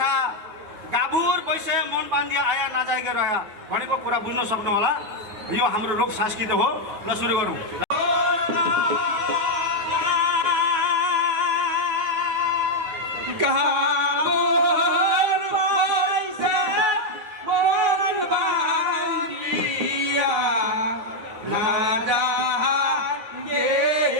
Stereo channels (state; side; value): late; left; 9.4 ms